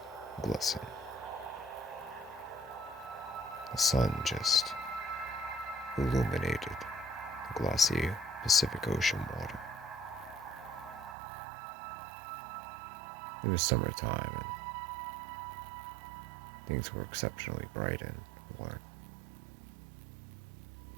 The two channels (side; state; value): left; drops out; at 11.2 s